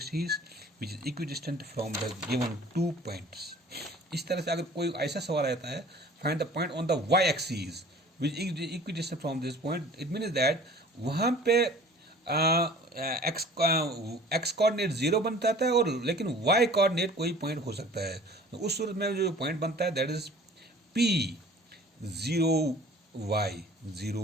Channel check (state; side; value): normal; both; correlation 0.48